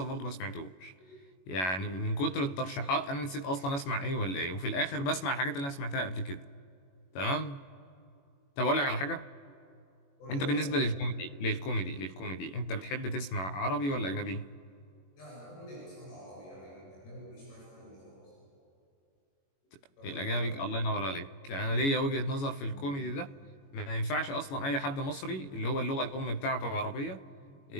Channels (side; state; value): right; late; 21 ms